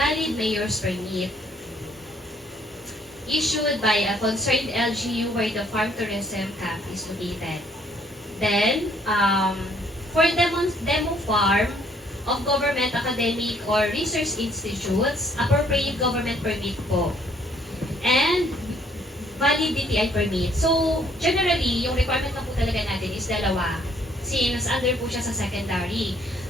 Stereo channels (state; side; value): normal; both; correlation 0.64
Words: mayor's permit issued by a concerned LGU where the farm tourism camp is located. Then, for demo farm of government, academic, or research institutes, appropriate government permit po. And valid DTI permit. So, generally, yung requirement na po talaga natin is dalawa. Since under po siya sa secondary.